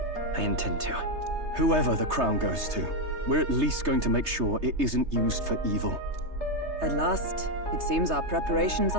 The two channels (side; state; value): left; late; 3.3 ms